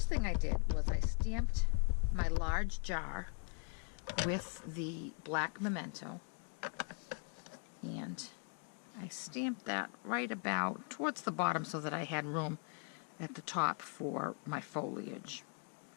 thing I did was I stamped my large jar with the black Memento, and I stamped that right about towards the bottom so that I had room at the top for my foliage.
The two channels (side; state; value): right; quieter; 39.9 dB